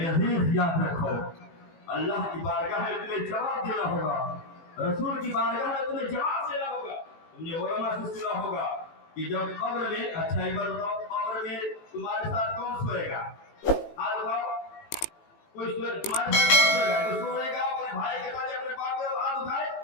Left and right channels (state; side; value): late; right; 18 ms